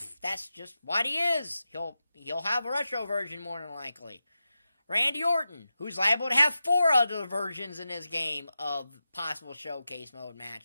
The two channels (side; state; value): both; inverted; correlation -0.92